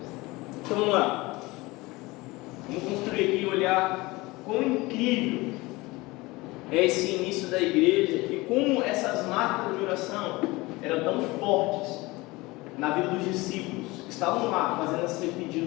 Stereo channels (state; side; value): quieter; right; 21.9 dB